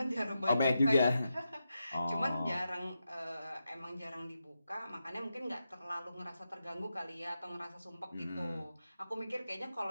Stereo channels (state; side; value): inverted; both; correlation -0.88